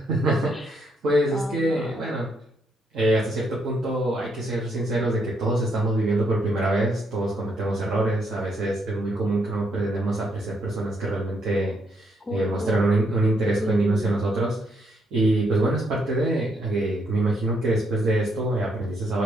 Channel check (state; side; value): normal; both; correlation 0.75